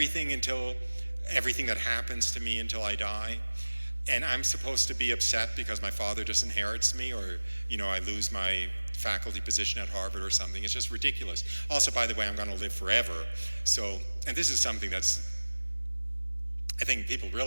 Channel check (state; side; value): inverted; both; correlation -1.00